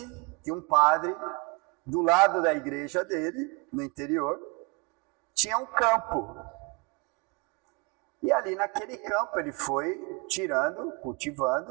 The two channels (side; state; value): left; quieter; 29.2 dB